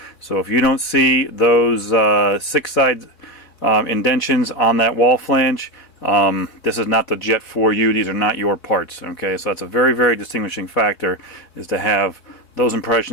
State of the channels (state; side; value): late; right; 4.2 ms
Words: so if you don't see those 6-side indentions on that wall flange, this is not the jet for you. These are not your parts. Okay, so that's a very, very distinguishing factor, is to have those